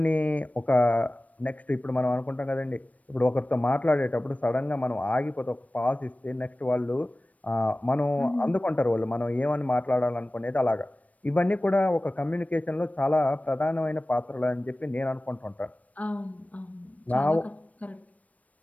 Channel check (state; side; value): late; right; 0.069 ms